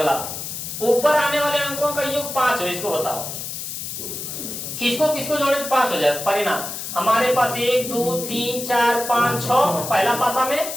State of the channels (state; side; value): noise; left; hiss, 7 dB below the sound